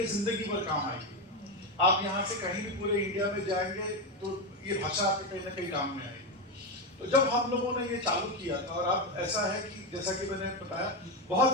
जिंदगी भर काम आएगी। आप यहाँ से कहीं भी पूरे इंडिया में जाएंगे तो ये भाषा आपके कहीं ना कहीं काम में आएगी। तो जब हम लोगों ने ये चालू किया था, और अब ऐसा है कि जैसा कि मैंने बताया,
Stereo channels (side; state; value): both; normal; correlation 0.13